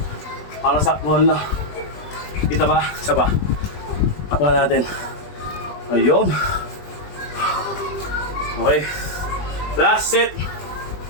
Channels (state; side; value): late; right; 20 ms